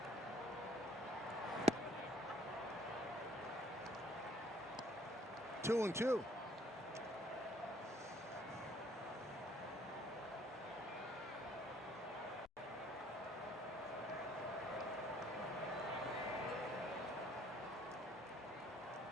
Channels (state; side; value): normal; both; correlation 0.60